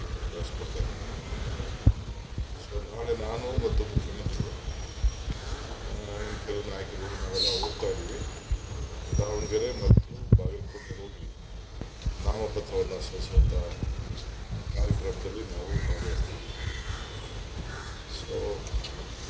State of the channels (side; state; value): both; identical; correlation 1.00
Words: ಕಳಿಸ್ಕೊಡ್ತೇನೆ. ಸೊ ನಾಳೆ ನಾನು ಮತ್ತು ಮುಖ್ಯಮಂತ್ರಿಗಳು ಕೆಲವು ನಾಯಕರು ನಾವೆಲ್ಲ ಹೋಗ್ತಾ ಇದ್ದೀವಿ. ದಾವಣಗೆರೆ ಮತ್ತು ಬಾಗಲಕೋಟೆ ಹೋಗಿ ನಾಮಪತ್ರವನ್ನು ಸಲ್ಲಿಸುವಂಥ ಕಾರ್ಯಕ್ರಮದಲ್ಲಿ ನಾವು ಭಾಗವಹಿಸ್ತೀವಿ. ಸೊ